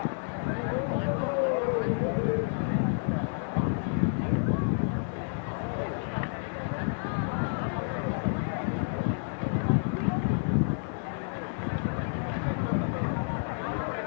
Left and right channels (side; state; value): right; silent; digital silence